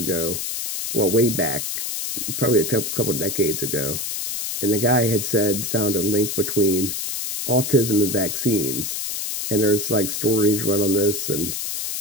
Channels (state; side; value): noise; left; hiss, 3 dB below the sound